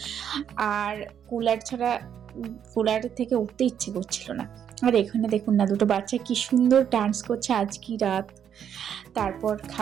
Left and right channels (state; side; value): quieter; left; 8.8 dB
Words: আর কুলার ছাড়া কুলার থেকে উঠতে ইচ্ছে করছিল না। আর এখানে দেখুন না, দুটো বাচ্চা কি সুন্দর ডান্স করছে আজ কি রাত। তারপর